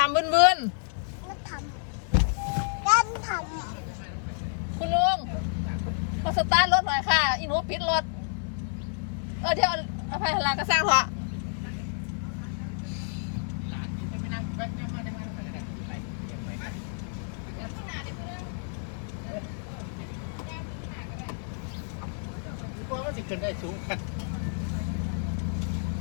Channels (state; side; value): silent; right; digital silence